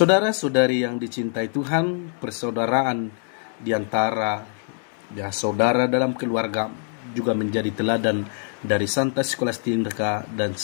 yang dicintai Tuhan, persaudaraan di antara saudara dalam keluarga juga menjadi teladan dari Santa Scholastica dan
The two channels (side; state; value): right; silent; 58 dB below the other